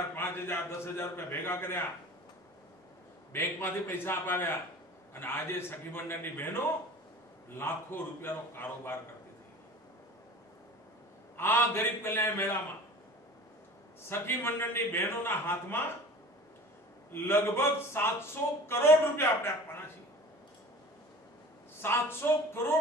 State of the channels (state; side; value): normal; both; correlation 0.41